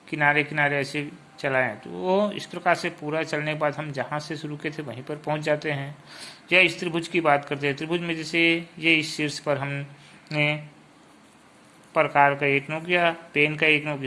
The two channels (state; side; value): identical; both; correlation 1.00